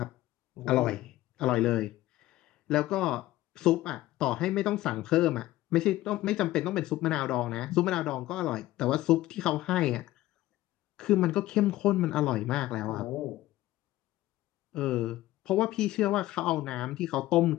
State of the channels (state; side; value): quieter; right; 16.0 dB